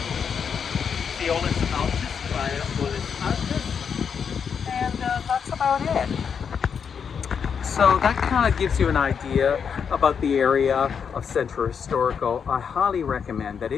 the Olis Altis by Olis Altis. And that's about it. So that kind of gives you an idea about the area of Centro Historico. I highly recommend that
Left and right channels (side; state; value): right; quieter; 6.8 dB